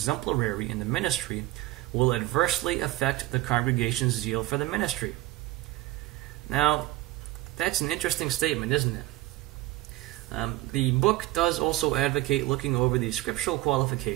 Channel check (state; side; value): quieter; left; 17.9 dB